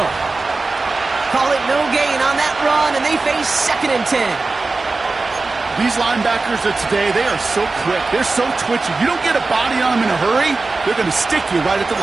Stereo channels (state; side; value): quieter; left; 3.7 dB